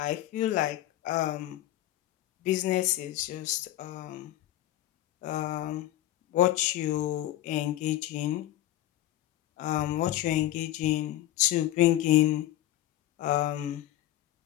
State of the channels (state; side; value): quieter; right; 14.1 dB